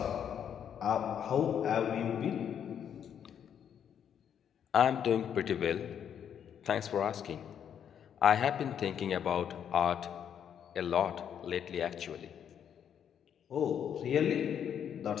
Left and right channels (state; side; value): quieter; right; 8.7 dB